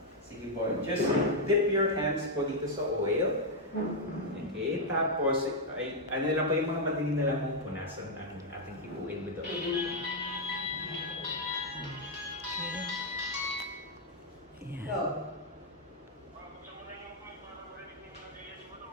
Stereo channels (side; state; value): both; normal; correlation -0.02